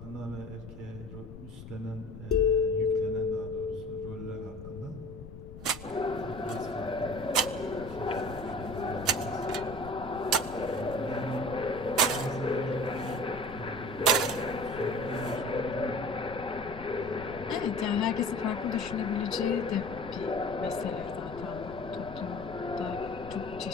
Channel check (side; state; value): left; noise; rumble, 14 dB below the sound